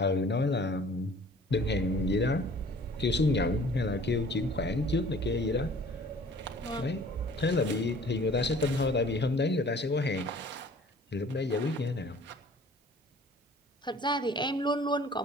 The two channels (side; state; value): both; normal; correlation 0.50